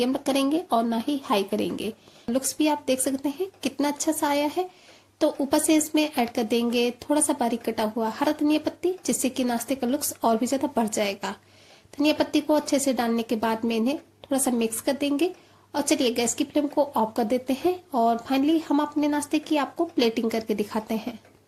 करेंगे और ना ही हाई करेंगे। लुक्स भी आप देख सकते हैं कितना अच्छा सा आया है। तो ऊपर से इसमें ऐड कर देंगे थोड़ा सा बारीक कटा हुआ हरा धनिया पत्ती, जिससे कि नाश्ते का लुक्स और भी ज्यादा बढ़ जाएगा। धनिया पत्ती को अच्छे से डालने के बाद में इन्हें थोड़ा सा मिक्स कर देंगे और चलिए गैस की फ्लेम को ऑफ कर देते हैं और फाइनली हम अपने नाश्ते की आपको प्लेटिंग करके दिखाते हैं।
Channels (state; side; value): identical; both; correlation 1.00